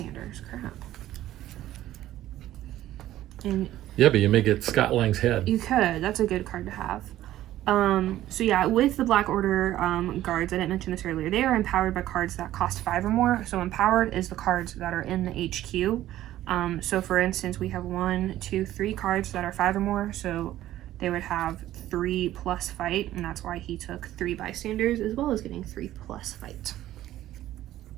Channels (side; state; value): left; quieter; 13.8 dB